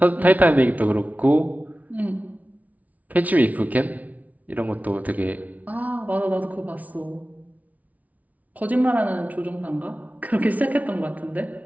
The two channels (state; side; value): late; left; 0.072 ms